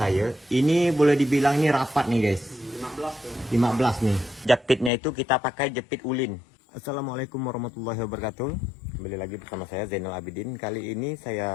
Ini boleh dibilang ini rapat nih guys. 15 nih. Jepitnya itu kita pakai jepit ulin. Assalamualaikum warahmatullahi wabarakatuh. Kembali lagi bersama saya Zainal Abidin. Kali ini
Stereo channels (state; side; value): drops out; right; at 4.9 s